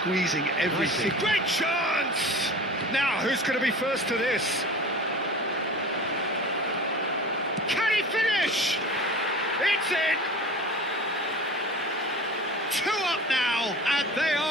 everything. Nicely. Great chance! Now, who's going to be first to this? Can he finish? It's in! 2 up now, and they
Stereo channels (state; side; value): normal; both; correlation 0.37